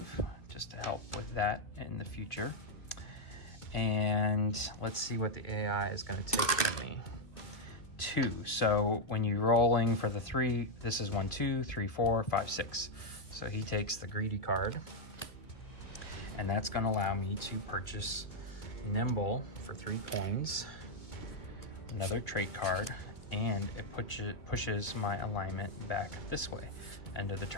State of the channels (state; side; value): late; right; 2.0 ms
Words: just to help with that in the future. And let's see what the AI is gonna take from me. 2, so when you're rolling for the 3, this is 1, 2, 3, 4, 5, 6. So he takes the Greedy card, and that's gonna allow me to purchase Nimble for 3 coins, another trait card, and it pushes my alignment back this way. End of the